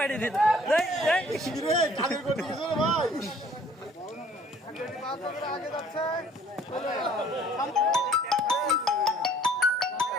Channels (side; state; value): both; normal; correlation 0.57